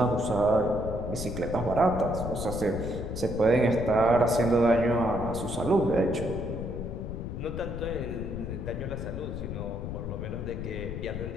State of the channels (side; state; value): left; noise; rumble, 6 dB below the sound